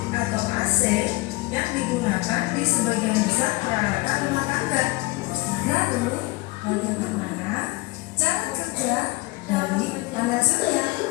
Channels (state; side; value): quieter; right; 22.2 dB